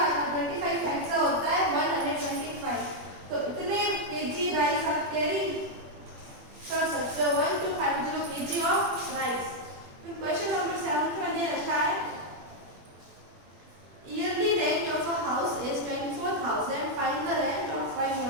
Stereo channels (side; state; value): left; late; 21 ms